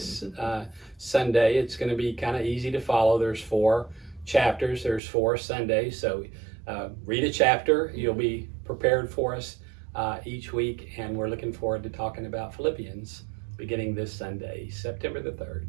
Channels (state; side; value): drops out; left; at 5.0 s